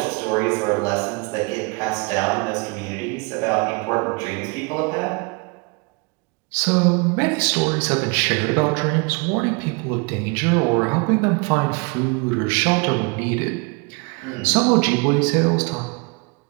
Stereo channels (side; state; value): left; quieter; 31.3 dB